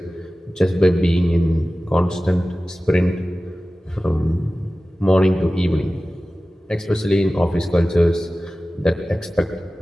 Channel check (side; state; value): both; normal; correlation 0.96